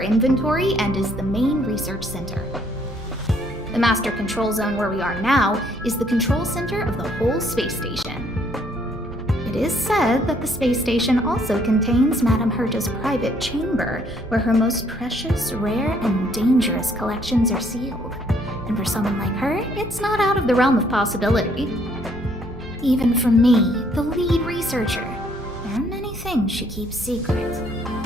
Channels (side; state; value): both; normal; correlation 0.66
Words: inventory and is the main research center. The master control zone where we are now is the control center of the whole space station. It is said that the space station also contains Madame Herta's private chamber, where her most precious, rare, and dangerous collections are sealed. And for someone like her, it's not out of the realm of possibility. Even from me, the lead researcher, there are many things she keeps secret.